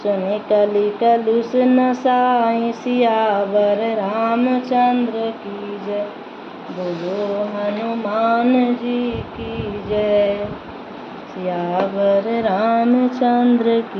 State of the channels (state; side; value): identical; both; correlation 1.00